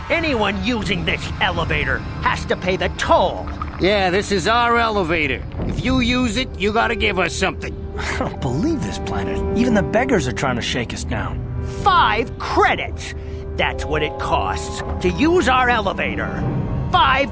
Anyone using this elevator has to pay the toll. Yeah, this is our elevator. If you use it, you gotta give us something. I don't believe this planet. Even the beggars are trying to shake us down. 5 credits! That's what it costs to use our elevator.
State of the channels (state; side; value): identical; both; correlation 1.00